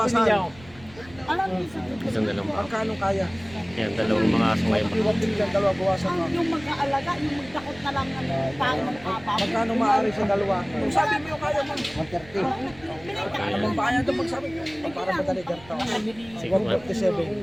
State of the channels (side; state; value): right; noise; rumble, 22 dB below the sound